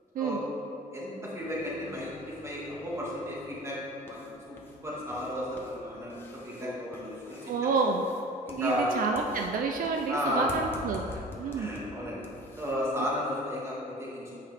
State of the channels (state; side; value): normal; both; correlation 0.40